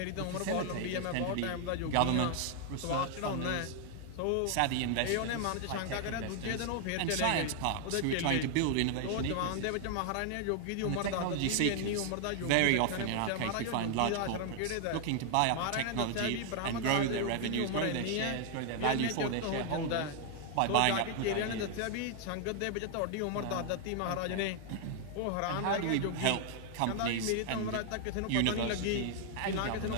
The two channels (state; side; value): different; both; correlation 0.00